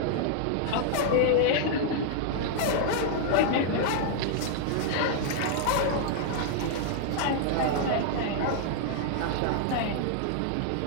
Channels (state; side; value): different; both; correlation -0.01